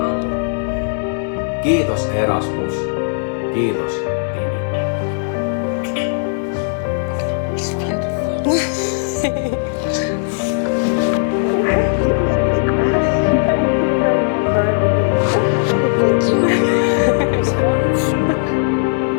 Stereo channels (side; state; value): right; silent; digital silence